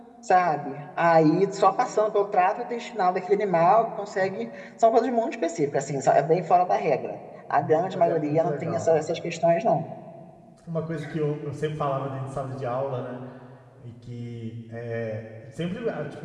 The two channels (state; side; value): identical; both; correlation 1.00